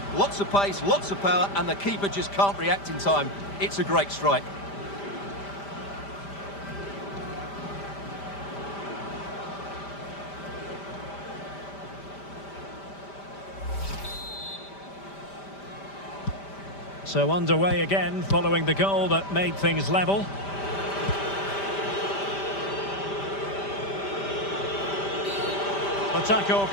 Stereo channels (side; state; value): right; late; 5.1 ms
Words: Lots of pace, lots of power, and the keeper just can't react in time. It's a great strike. So underway again, following the goal that made things level. The tackle